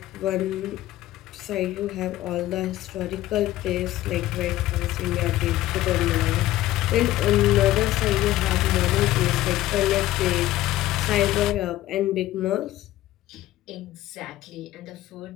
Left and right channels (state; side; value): quieter; right; 15.2 dB